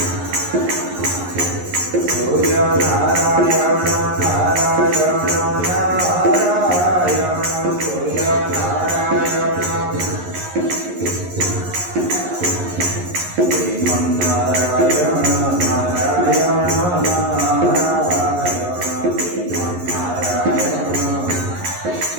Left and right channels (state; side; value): late; left; 11 ms